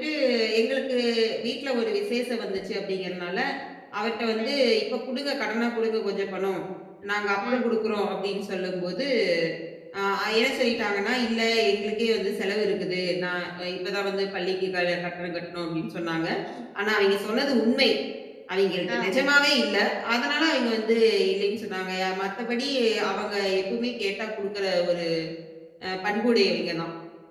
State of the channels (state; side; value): identical; both; correlation 1.00